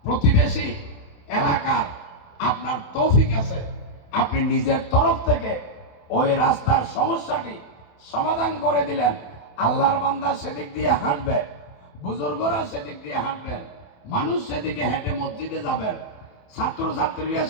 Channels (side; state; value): right; late; 28 ms